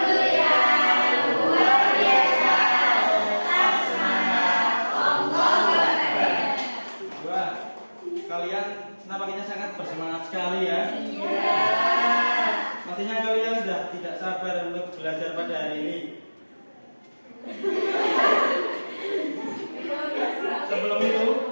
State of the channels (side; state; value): both; inverted; correlation -1.00